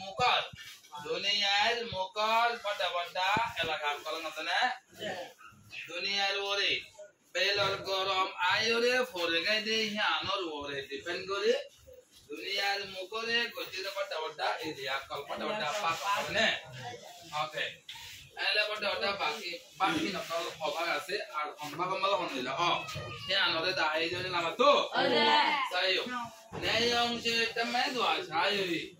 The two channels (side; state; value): both; identical; correlation 1.00